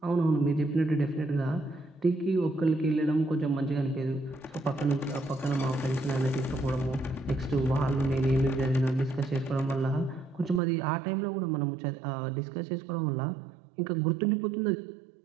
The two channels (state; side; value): drops out; left; at 10.6 s